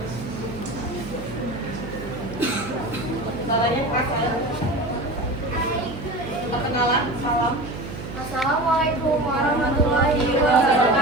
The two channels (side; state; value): right; noise; hum, 10 dB below the sound